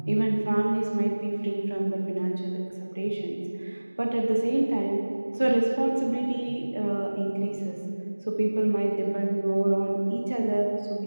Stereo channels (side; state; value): both; inverted; correlation -1.00